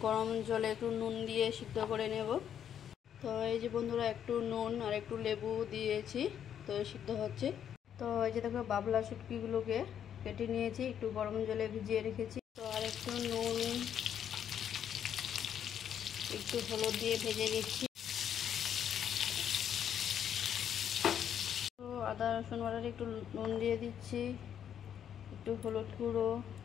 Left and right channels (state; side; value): quieter; right; 9.2 dB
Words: গরম জলে একটু নুন দিয়ে সিদ্ধ করে নেব। তো এই যে বন্ধুরা, একটু নুন আর একটু লেবু দিয়েছি, তো সিদ্ধ হচ্ছে। তো এই যে দেখো, বাবলা শুটকিগুলোকে কেটে নিয়েছি, একটু গরম জলে ভিজিয়ে রেখেছি। তো আর একটু নুন, একটু হলুদ দিয়ে ভেজে নিচ্ছি। তো আদা রসুন বাটার একটু নুন দিয়ে দিচ্ছি, একটু হলুদ গুঁড়ো